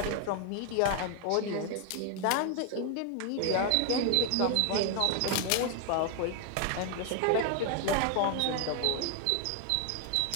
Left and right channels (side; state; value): both; different; correlation 0.00